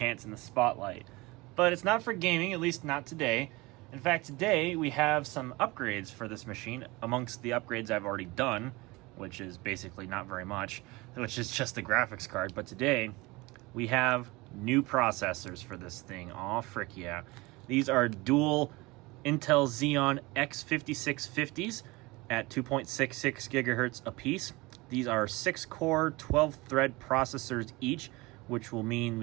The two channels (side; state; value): left; quieter; 22.9 dB